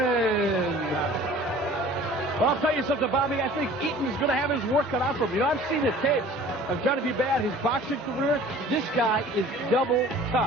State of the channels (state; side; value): normal; both; correlation 0.47